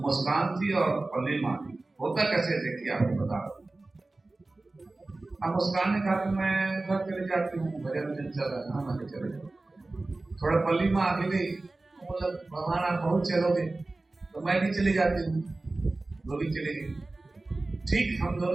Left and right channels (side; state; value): left; quieter; 3.1 dB